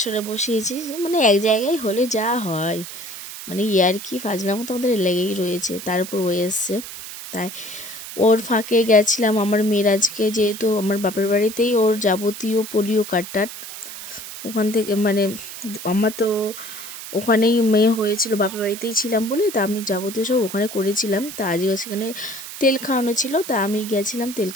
বসিয়েছি, মানে এক জায়গায় হলে যা হয়, মানে ইয়ার্কি ফাজলামো তো আমাদের লেগেই রয়েছে। তার উপর ও এসছে, তাই ওর ফাঁকে গেছিলাম আমার মেয়ের আজকে, যেহেতু আমার বাপের বাড়িতেই ওর যাবতীয় পোলিও কার্ড ওখান থেকে, মানে আমার তো ওখানেই মেয়ে হয়েছিল, বাপের বাড়িতেই ছিলাম বলে, তা আমি যাবতীয় সব ওখানে করেছিলাম। তা আজকে সেখানে তেল খাওয়ানো ছিল, তা আমি গেছিলাম তেল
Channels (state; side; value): noise; right; hiss, 11 dB below the sound